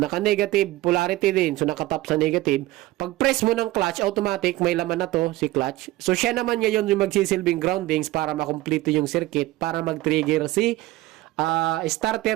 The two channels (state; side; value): quieter; left; 17.7 dB